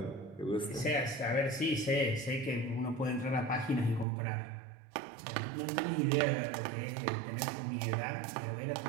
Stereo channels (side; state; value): left; drops out; at 4.0 s